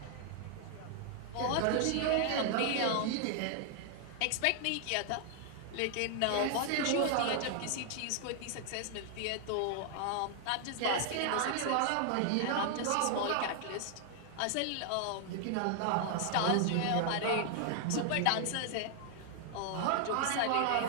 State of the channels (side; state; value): both; different; correlation 0.00